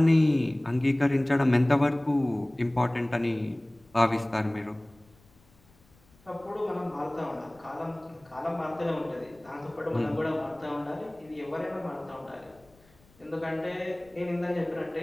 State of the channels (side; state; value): left; noise; rumble, 30 dB below the sound